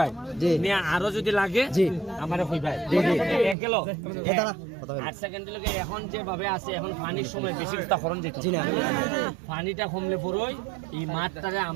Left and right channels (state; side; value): drops out; left; at 3.6 s